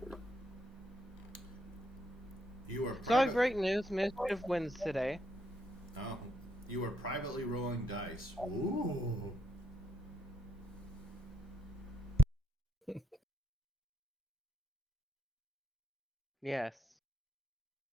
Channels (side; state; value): both; normal; correlation 0.76